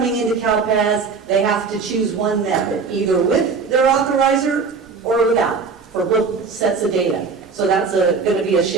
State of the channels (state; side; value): quieter; left; 5.0 dB